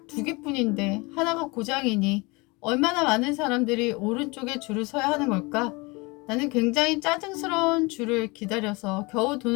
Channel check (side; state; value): right; quieter; 26.0 dB